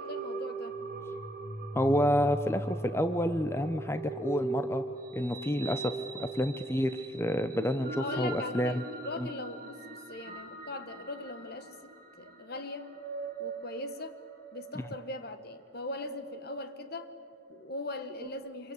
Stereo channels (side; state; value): both; normal; correlation 0.68